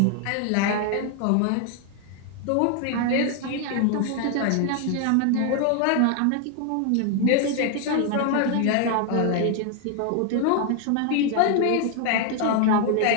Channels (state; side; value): different; both; correlation 0.00